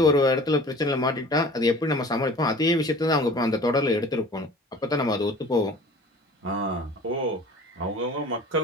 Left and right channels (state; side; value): normal; both; correlation 0.44